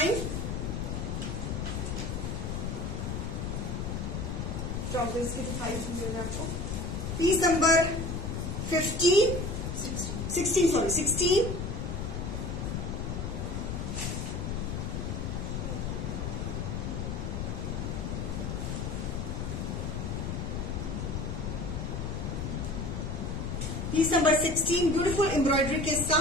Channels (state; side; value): noise; left; rumble, 3 dB below the sound